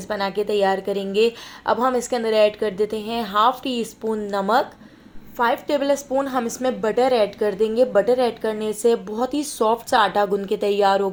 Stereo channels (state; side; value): identical; both; correlation 1.00